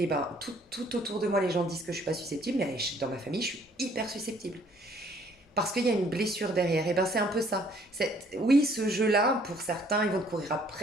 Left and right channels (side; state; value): both; normal; correlation 0.61